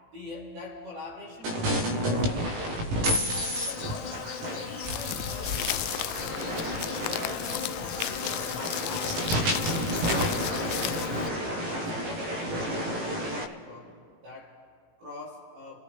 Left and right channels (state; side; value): late; left; 18 ms